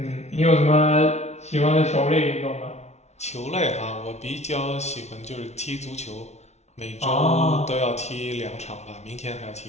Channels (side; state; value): right; late; 0.32 ms